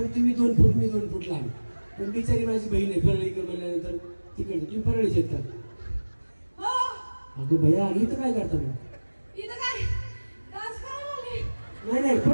तुम्ही 2 फूट मी 2 फूट लांब, पण बिचारी माझी बहीण आहे परळीकर म्हणल्यानंतर तिकडे तुम्ही परळीच येत का? अगो भया इथं काय करता मग? नाही नाही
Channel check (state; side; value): inverted; both; correlation -1.00